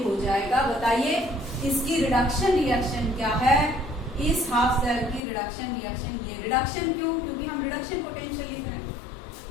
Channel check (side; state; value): right; drops out; at 5.2 s